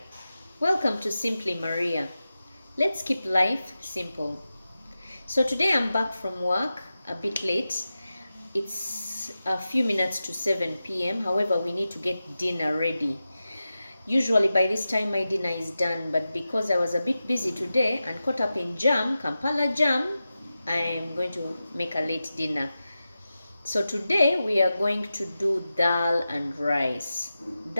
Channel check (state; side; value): inverted; both; correlation -0.93